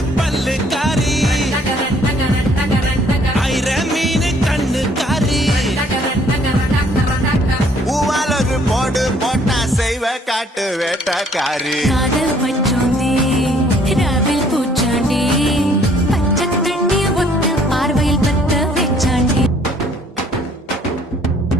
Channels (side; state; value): both; normal; correlation 0.62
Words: பல்லுக்காரி டகரன் டகரன் டகரன் டகரன் ஐர மீன் கண்ணுக்காரி டகரன் டகரன் டகரன் டகரன் பூவால் ஒரு போடு போட்டா செய்வ காட்டு வேட்டக்காரி காதல் வச்சோந்தே ராவில் பூச்சாண்டி பச்சை தண்ணி ஒத்த பார்வையில் பத்த வெச்சாண்டி